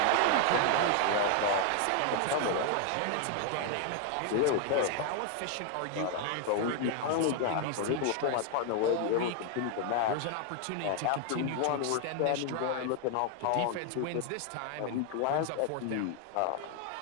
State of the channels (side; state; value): both; different; correlation 0.00